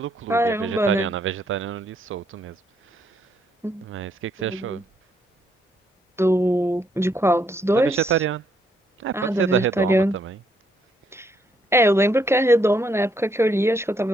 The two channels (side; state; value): both; normal; correlation 0.72